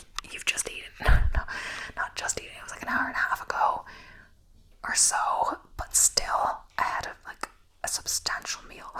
you've just eaten. No, not just eaten. It was an hour and a half ago. or so, but still I had a substantial meal.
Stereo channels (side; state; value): both; identical; correlation 1.00